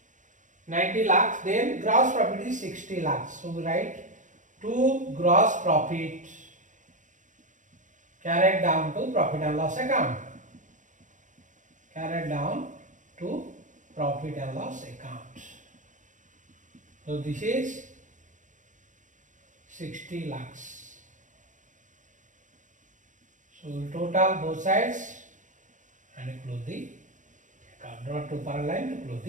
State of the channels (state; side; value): late; left; 0.36 ms